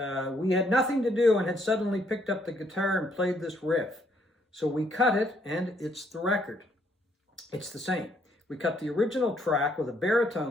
had nothing to do and had suddenly picked up the guitar and played this riff. So we cut it, and it's the record. It's the same. We cut the original track with a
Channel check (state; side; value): normal; both; correlation 0.69